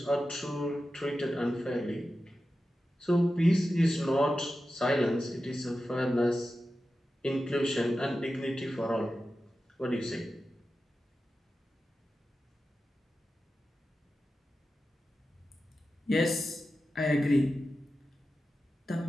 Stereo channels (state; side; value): normal; both; correlation 0.92